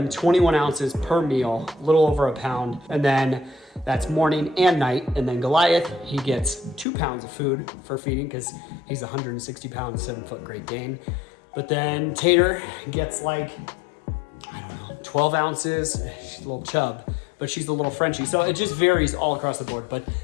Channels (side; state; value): right; drops out; at 6.9 s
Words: 21 ounces per meal, a little over a pound. And then that's morning and night. And then Goliath, he gets 2 pounds of food for feeding, because he's 160 pounds, 7-foot Great Dane. But then Tater gets like, I don't know 12 ounces. She's a little chub, but she's a little Frenchie. So it just varies all across the board, but